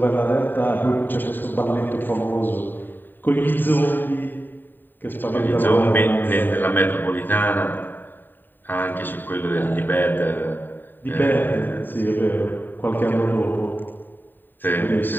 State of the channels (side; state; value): right; late; 0.092 ms